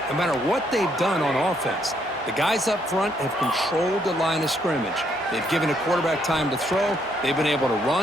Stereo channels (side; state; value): both; normal; correlation 0.72